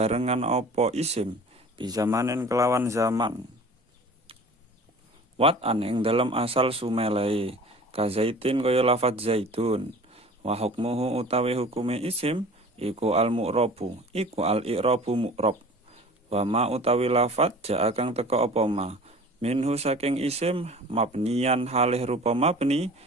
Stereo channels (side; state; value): both; normal; correlation 0.43